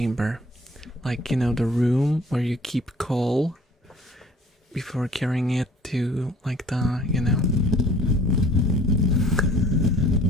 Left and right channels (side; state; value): both; normal; correlation 0.52